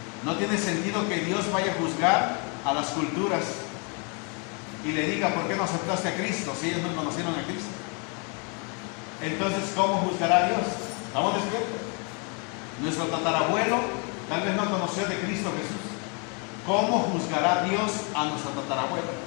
No tiene sentido que Dios vaya a juzgar a las culturas y le diga, ¿por qué no aceptaste a Cristo si ellos no conocieron a Cristo? Entonces, ¿cómo juzgará a Dios? ¿Estamos despiertos? Nuestro tatarabuelo tal vez no conoció de Cristo Jesús. ¿Cómo juzgará Dios a nuestro tatarabuelo?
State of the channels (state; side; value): quieter; right; 34.5 dB